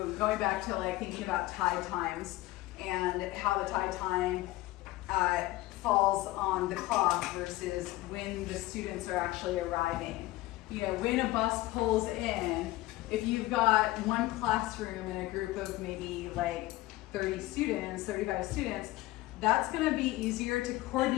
going back to like thinking about tide times and how the tide time falls on the clock versus when the students are actually arriving. You know, when a bus pulls in, if you've got one classroom in a group of maybe like 30 students, 35 students, that's gonna be easier to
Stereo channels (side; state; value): right; quieter; 18.0 dB